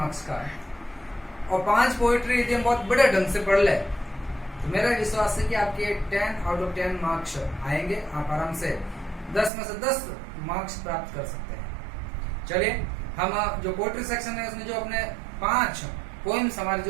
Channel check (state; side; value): drops out; left; at 9.5 s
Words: का और 5 पोएट्री यदि हम बहुत बड़े ढंग से पढ़ ले तो मेरा विश्वास है कि आपके 10 आउट ऑफ 10 मार्क्स आएंगे। आप आराम से 10 में से 10 मार्क्स प्राप्त कर सकते हैं। चलिए, हम जो पोएट्री सेक्शन है उसमें जो अपने 5 पोएम्स हमारे